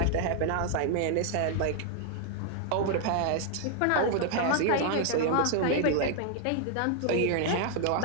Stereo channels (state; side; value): different; both; correlation 0.00